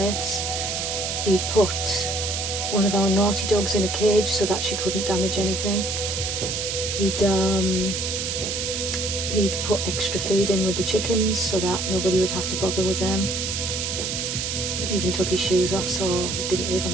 He'd put one of our naughty dogs in a cage so that she couldn't damage anything. He'd put extra feed in with the chickens so that nobody would have to bother with them. He'd even took his shoes off so he didn't leave a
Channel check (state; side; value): noise; right; hiss, 2 dB below the sound